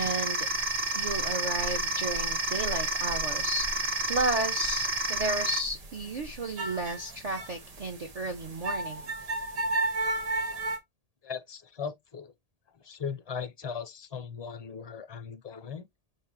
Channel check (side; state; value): left; late; 1.8 ms